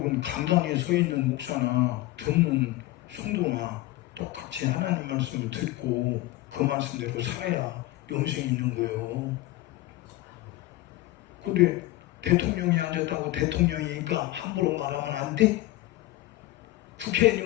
강단에 서 있는 목사나 듣는 성도나 똑같이 하나님 말씀을 듣고 그 말씀대로 살아야 영생이 있는 거예요. 근데 대통령이 앉았다고 대통령이니까 함부로 말하면 안 돼?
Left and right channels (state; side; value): quieter; right; 17.5 dB